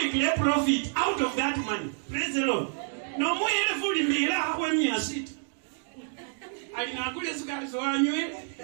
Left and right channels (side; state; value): left; silent; 59 dB below the other